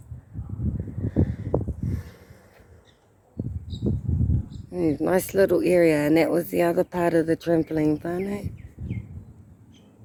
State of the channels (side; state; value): both; identical; correlation 1.00